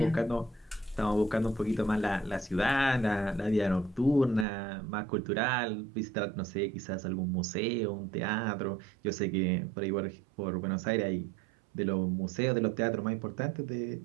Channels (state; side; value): drops out; left; at 4.5 s